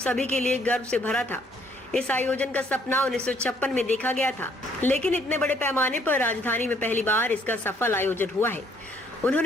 के लिए गर्व से भरा था। इस आयोजन का सपना 1956 में देखा गया था, लेकिन इतने बड़े पैमाने पर राजधानी में पहली बार इसका सफल आयोजन हुआ है।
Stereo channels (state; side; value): normal; both; correlation 0.65